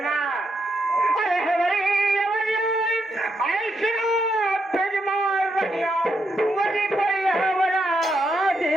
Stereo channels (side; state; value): both; normal; correlation 0.80